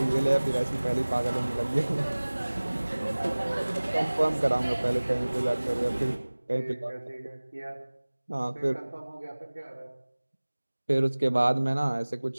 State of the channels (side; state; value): both; inverted; correlation -1.00